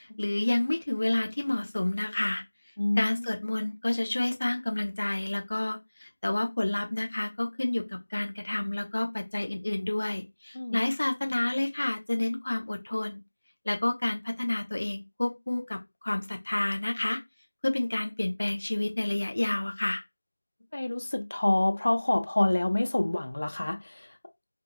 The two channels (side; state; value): both; inverted; correlation -1.00